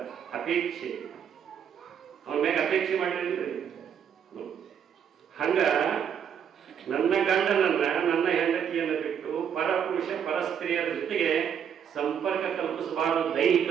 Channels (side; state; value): left; quieter; 8.2 dB